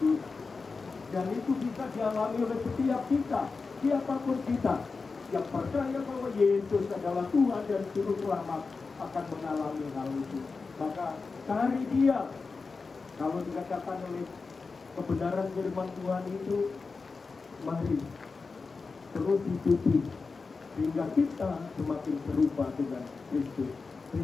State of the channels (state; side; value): quieter; right; 4.4 dB